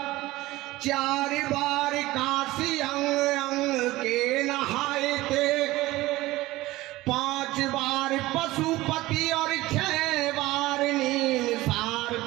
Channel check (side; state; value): left; quieter; 18.3 dB